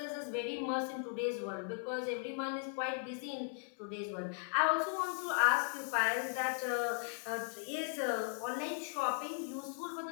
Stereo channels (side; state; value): right; silent; 53 dB below the other